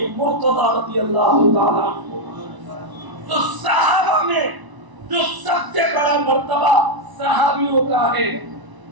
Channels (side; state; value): left; late; 1.0 ms